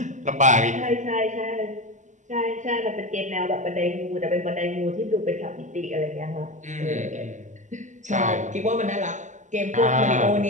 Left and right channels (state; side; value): late; left; 0.35 ms